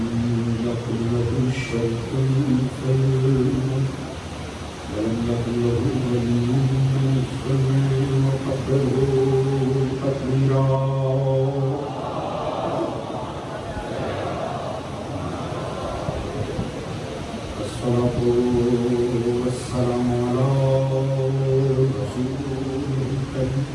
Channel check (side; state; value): both; identical; correlation 1.00